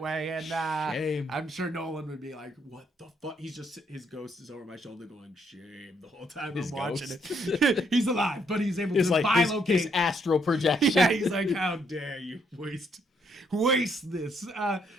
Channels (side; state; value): both; normal; correlation 0.72